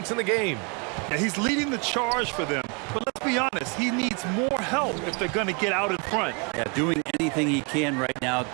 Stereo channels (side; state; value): left; quieter; 33.7 dB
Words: in the game. Yeah, he's leading the charge for them. But let's be honest, he needs more help if they're going to get out in front. Yeah, doing anything he can right now